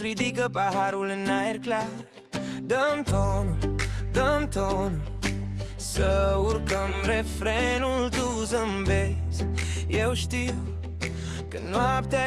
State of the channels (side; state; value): both; identical; correlation 1.00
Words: ridică paharul în aer clar. Dăm tonul, să urcăm refrenul, tu zâmbezi. Eu știu că